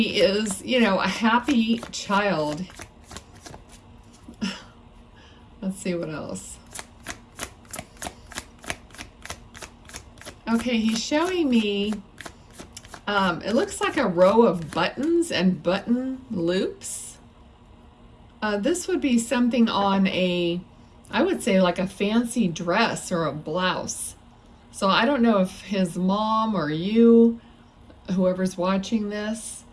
is, you know, a happy child. Let's see what else. Okay, he's showing me, it looks like a row of buttons and button loops. This would be something on a, I would say like a fancy dress or a blouse. So I don't know if his mom or you, whoever's watching this,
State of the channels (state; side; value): identical; both; correlation 1.00